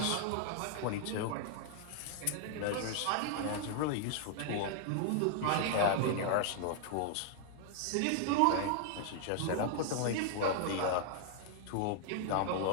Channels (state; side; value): different; both; correlation -0.01